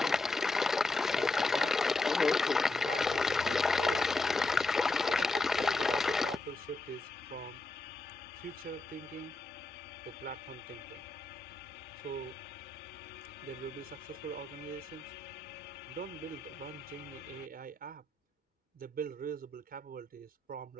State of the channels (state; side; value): quieter; right; 3.1 dB